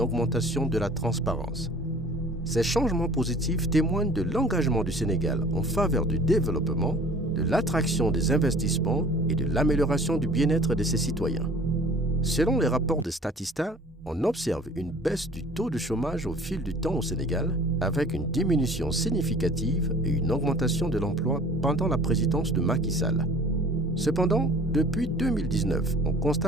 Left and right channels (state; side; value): normal; both; correlation 0.48